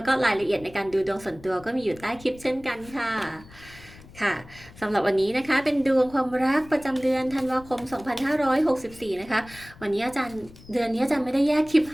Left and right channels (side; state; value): left; noise; rumble, 21 dB below the sound